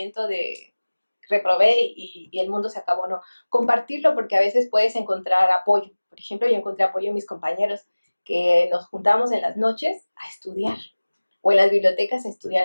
de reprobé y el mundo se acabó, no. Compartirlo porque a veces puedes encontrar apoyo. Por ejemplo, yo encontré apoyo en mis compañeros que nos juntamos en las noches a estudiar o en las bibliotecas a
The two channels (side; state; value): both; inverted; correlation -1.00